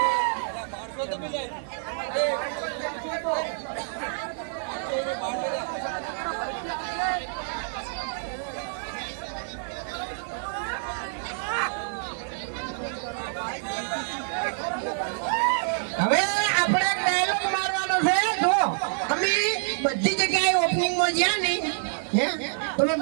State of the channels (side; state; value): left; silent; digital silence